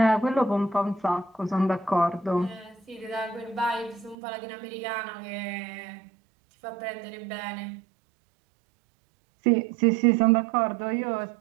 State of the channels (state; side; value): drops out; left; at 4.2 s